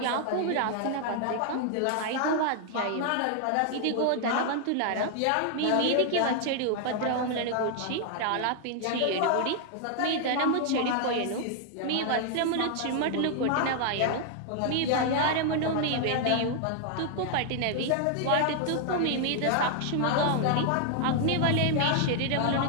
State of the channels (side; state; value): both; different; correlation 0.00